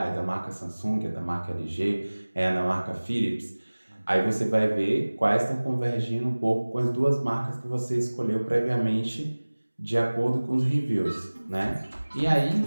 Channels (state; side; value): inverted; both; correlation -1.00